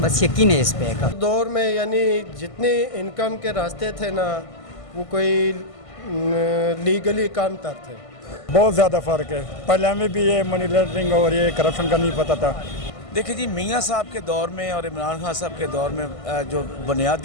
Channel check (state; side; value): late; right; 1.5 ms